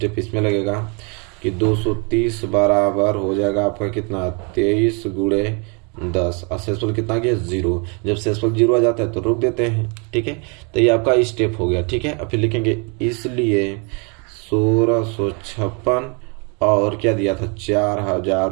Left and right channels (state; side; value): quieter; left; 34.1 dB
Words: इसमें लगेगा कि 230 बराबर हो जाएगा आपका कितना 23 गुणे 10 और शेषफल कितना गया 0। जब शेषफल 0 आ जाता है तो रोक देते हैं। ठीक है, तो ये आपका स्टेप हो गया। ठीक है, अब फिर लिखेंगे इसलिए 1656 और क्या दिया था